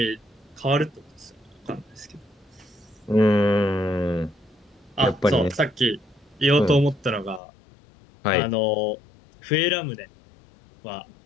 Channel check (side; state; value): right; drops out; at 7.4 s